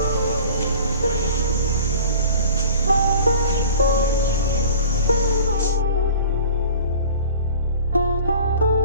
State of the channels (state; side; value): inverted; both; correlation -0.43